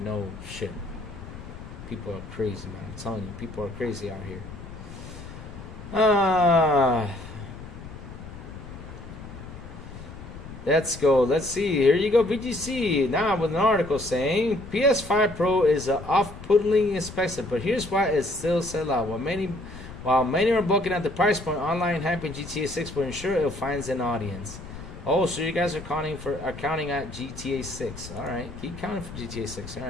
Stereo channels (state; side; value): noise; left; rumble, 13 dB below the sound